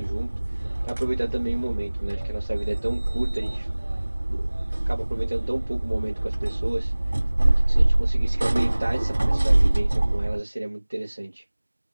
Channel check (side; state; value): both; inverted; correlation -1.00